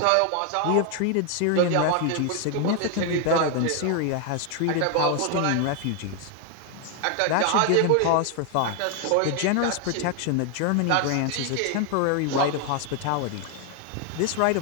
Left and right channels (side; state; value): both; different; correlation 0.00